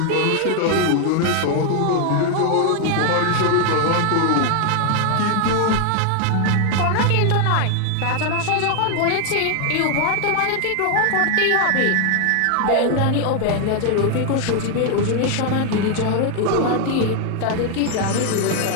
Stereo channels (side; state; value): both; different; correlation 0.00